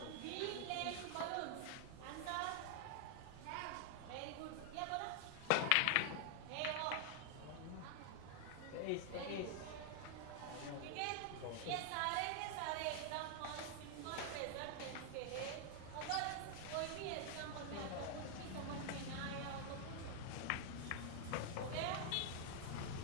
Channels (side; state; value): both; different; correlation 0.00